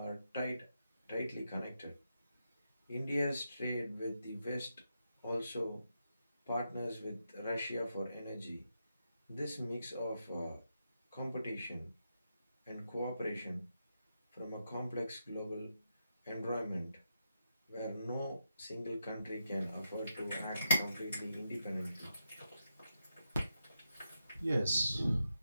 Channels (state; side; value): inverted; both; correlation -0.84